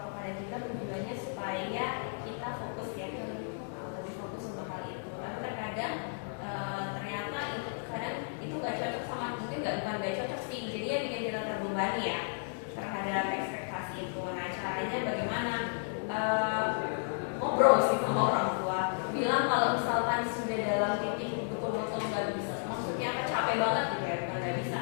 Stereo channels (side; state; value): right; silent; digital silence